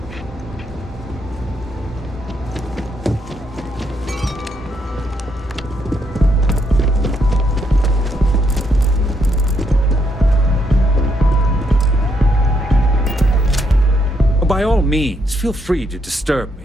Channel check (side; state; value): both; normal; correlation 0.75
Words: By all means, feel free to disturb